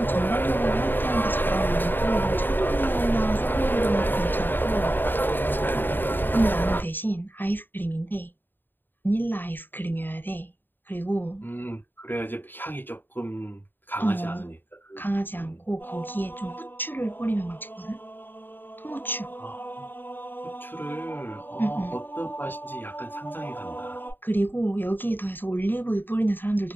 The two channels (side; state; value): right; late; 0.094 ms